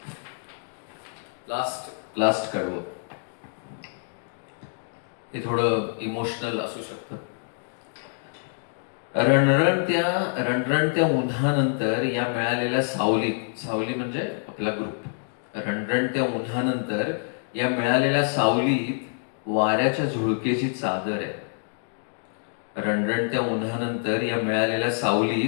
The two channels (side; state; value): right; silent; digital silence